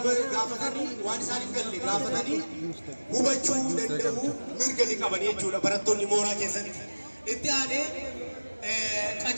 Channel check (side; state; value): both; inverted; correlation -1.00